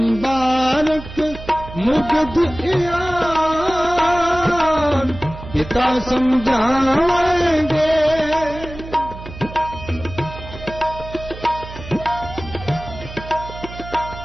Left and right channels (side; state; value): right; noise; hum, 13 dB below the sound